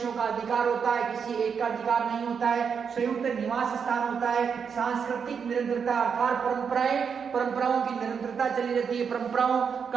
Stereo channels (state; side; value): quieter; left; 6.5 dB